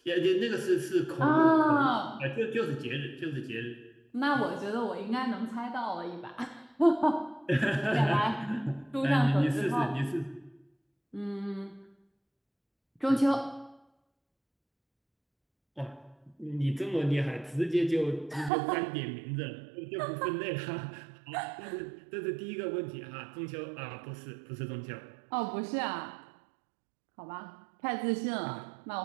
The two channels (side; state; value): left; drops out; at 18.5 s